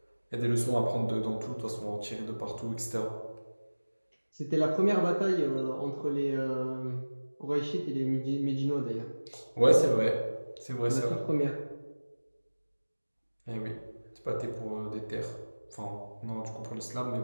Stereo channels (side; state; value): both; inverted; correlation -1.00